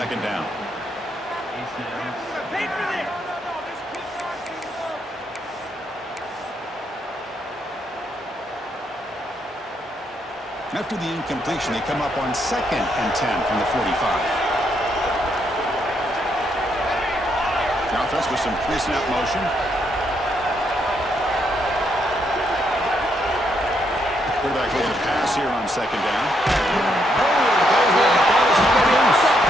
down. After the incompletion, they come up on 2nd and 10 from the 45. The offense with some pre-snap motion. Quarterback looking to pass here on 2nd down.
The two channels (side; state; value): both; normal; correlation 0.76